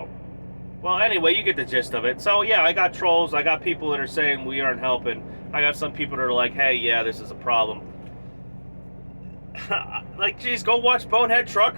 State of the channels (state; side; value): inverted; both; correlation -1.00